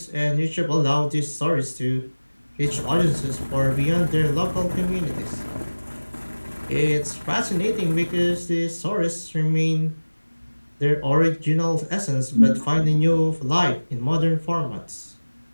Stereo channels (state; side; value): inverted; both; correlation -1.00